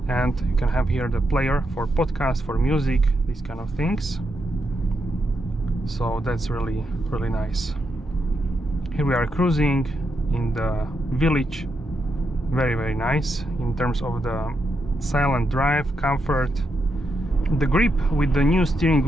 and you can have here the player for podcast, for music, these kind of things. So that's really nice. Here we are cruising in the village. Very nice in terms of the silent drive, comfort. The grip with the new steering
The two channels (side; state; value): both; normal; correlation 0.83